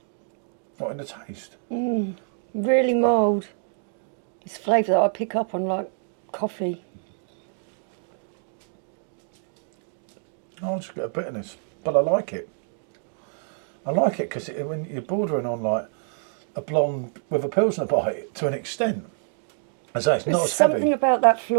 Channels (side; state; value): left; silent; 61 dB below the other